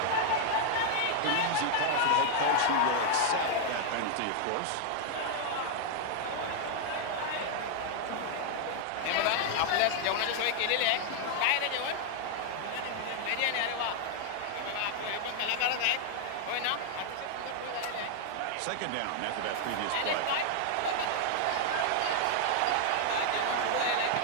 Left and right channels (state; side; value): different; both; correlation 0.00